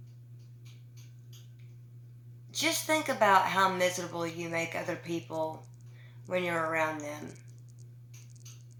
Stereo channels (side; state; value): both; identical; correlation 1.00